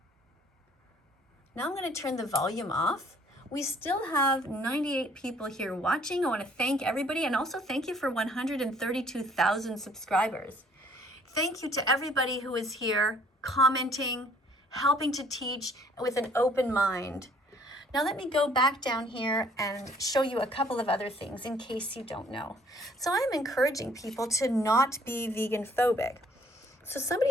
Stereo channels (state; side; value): normal; both; correlation 0.59